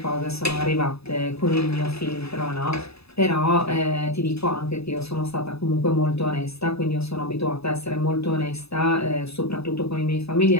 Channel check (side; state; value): right; late; 0.79 ms